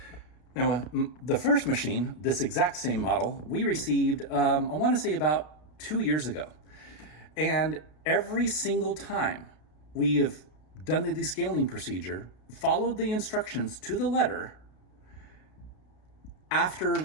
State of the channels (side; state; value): right; late; 33 ms